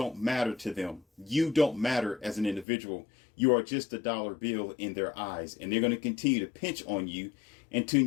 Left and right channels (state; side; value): drops out; right; at 2.7 s